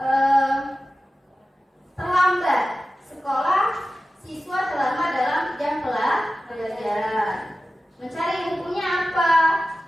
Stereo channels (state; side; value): normal; both; correlation 0.95